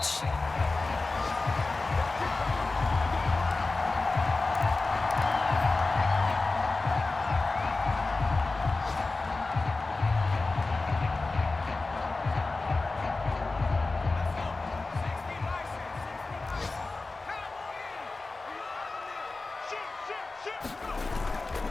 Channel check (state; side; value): quieter; right; 3.5 dB